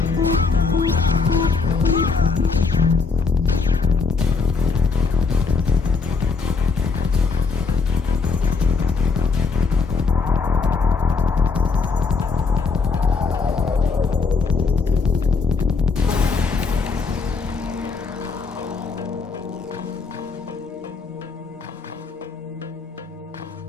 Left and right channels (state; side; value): quieter; right; 4.7 dB